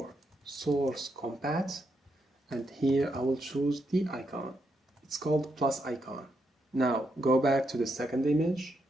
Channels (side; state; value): both; normal; correlation 0.81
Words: source compat, and here I will choose the icon. It's called plus icon. Now go back to the second image